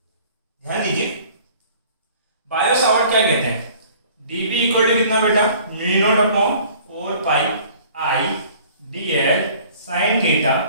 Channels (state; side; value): inverted; both; correlation -0.52